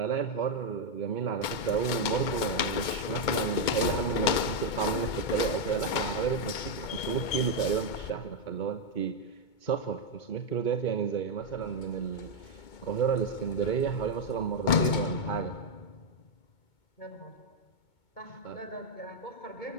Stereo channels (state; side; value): late; right; 2.2 ms